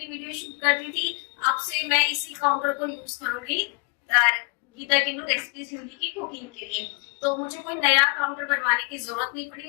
वीडियो शूट करती थी, अब से मैं इसी काउंटर को यूज करूंगी गीता किन्नू रेसिपीज हिंदी की कुकिंग के लिए। तो मुझे कोई नया काउंटर बनवाने की जरूरत नहीं पड़ी,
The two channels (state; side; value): quieter; right; 32.0 dB